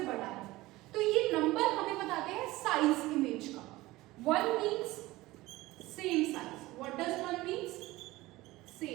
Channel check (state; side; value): quieter; left; 19.0 dB